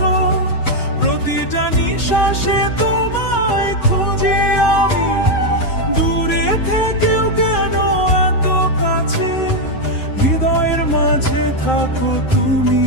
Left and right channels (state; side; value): late; right; 7.8 ms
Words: প্রতিটা নিঃশ্বাসে তোমায় খুঁজি আমি। দূরে থেকেও কেন এত কাছে, হৃদয়ের মাঝে থাকো তুমি,